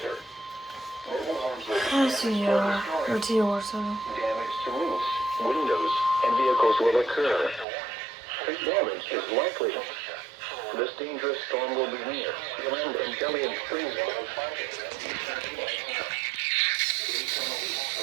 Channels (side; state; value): left; drops out; at 7.7 s